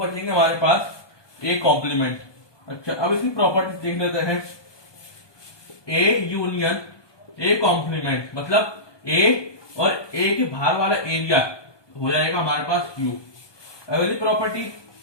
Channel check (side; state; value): right; late; 1.2 ms